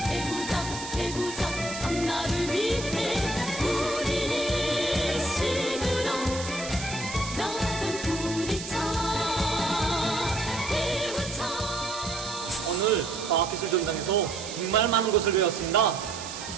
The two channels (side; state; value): right; noise; hiss, 9 dB below the sound